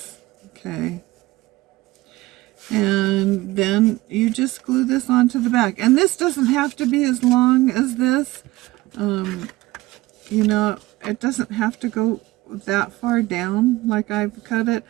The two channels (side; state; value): left; quieter; 18.8 dB